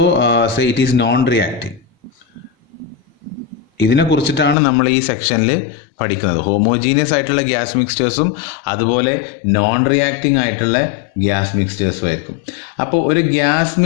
say it is non-reacting. ഇതിനെ കുറിച്ചിട്ടാണ് നമ്മൾ ഈ സെക്ഷനിൽ പഠിക്കുന്നത്. ഹോമോജീനിയസ് ആയിട്ടുള്ള ഗ്യാസ് മിക്സ്ചേഴ്സും അതുപോലെ നോൺ റിയാക്ടിങ് ആയിട്ടുള്ള ഗ്യാസ് മിക്സ്ചേഴ്സും ആയിരിക്കും. അപ്പോൾ ഒരു ഗ്യാസ്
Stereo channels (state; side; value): drops out; right; at 4.5 s